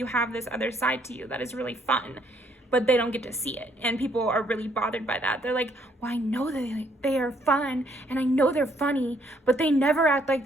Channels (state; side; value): normal; both; correlation 0.68